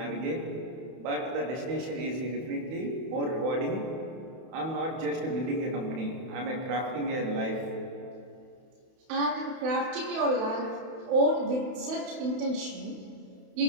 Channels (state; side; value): late; left; 31 ms